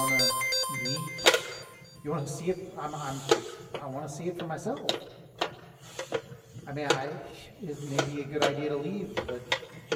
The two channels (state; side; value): identical; both; correlation 1.00